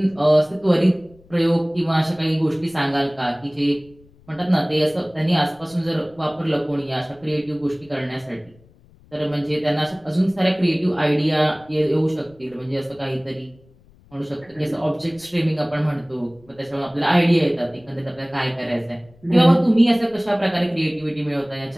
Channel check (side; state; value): left; noise; rumble, 28 dB below the sound